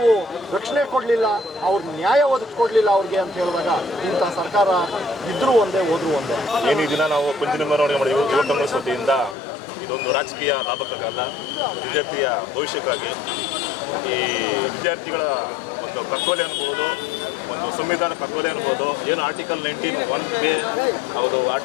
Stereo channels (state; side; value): drops out; right; at 9.3 s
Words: ರಕ್ಷಣೆ ಕೊಡಲಿಲ್ಲ, ಅವ್ರ ನ್ಯಾಯ ಒದಗಿಸ್ಕೊಡ್ಲಿಲ್ಲ ಅವ್ರಿಗೆ ಅಂತ ಹೇಳಿದಾಗ ಇಂತಹ ಸರ್ಕಾರ ಇದ್ರೂ ಒಂದೇ ಹೋದ್ರೂ ಒಂದೇ. ಏನು ಈ ದಿನ ನಾವು ಪಂಚಿನ ಮೆರವಣಿಗೆ ಮಾಡಿದ್ವಿ ಯುವ ಕಾಂಗ್ರೆಸ್ ವತಿಯಿಂದ. ಇದೊಂದು ರಾಜಕೀಯ ಲಾಭಕ್ಕಾಗಲ್ಲ, ವಿದ್ಯಾರ್ಥಿಯ ಭವಿಷ್ಯಕ್ಕಾಗಿ. ಈ ವಿದ್ಯಾರ್ಥಿಗಳ ಒಂದು ಕಗ್ಗೊಲೆ ಅನ್ಬೋದು, ಒಂದು ಸಂವಿಧಾನ ಕಗ್ಗೊಲೆ ಅನ್ಬೋದು. ಏನು ಆರ್ಟಿಕಲ್ 19(1)A ಹೌದು,